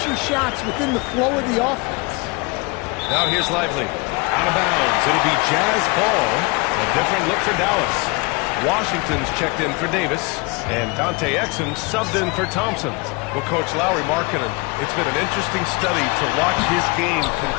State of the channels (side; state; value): right; quieter; 27.5 dB